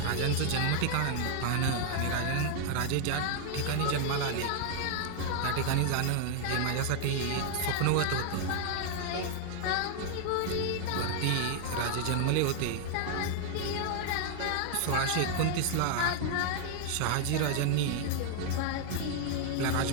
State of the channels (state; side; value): different; both; correlation 0.00